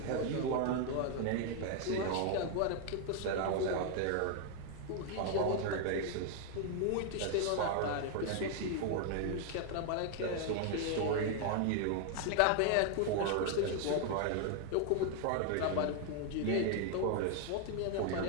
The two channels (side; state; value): both; different; correlation 0.00